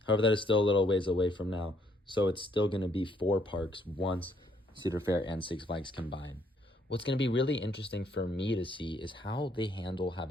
However, that is still a little ways away from now, so it's still going to be 4 parks once Cedar Fair and Six Flags combine. What's going to be really interesting for me to see is how they handle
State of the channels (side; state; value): both; normal; correlation 0.69